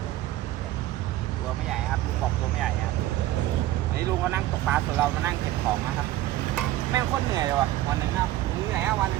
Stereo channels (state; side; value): quieter; left; 14.9 dB